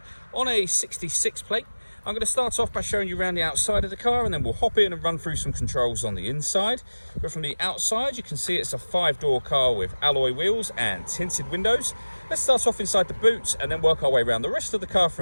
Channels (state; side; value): inverted; both; correlation -1.00